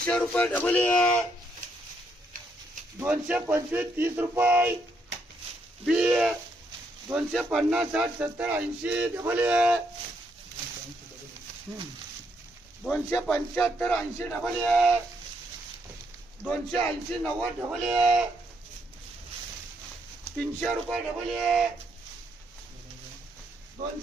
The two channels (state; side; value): normal; both; correlation 0.75